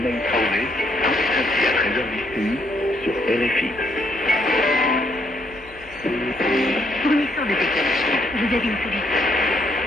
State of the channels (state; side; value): noise; left; hum, 23 dB below the sound